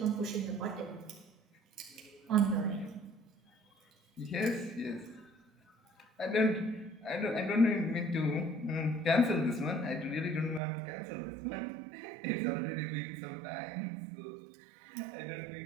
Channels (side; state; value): left; drops out; at 10.6 s